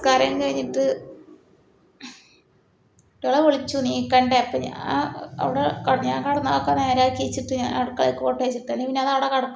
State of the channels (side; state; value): both; identical; correlation 1.00